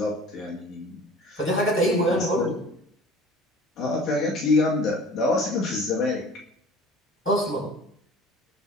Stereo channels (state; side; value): normal; both; correlation 0.45